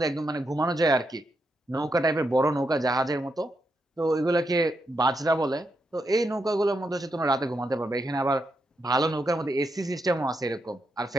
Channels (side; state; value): both; normal; correlation 0.82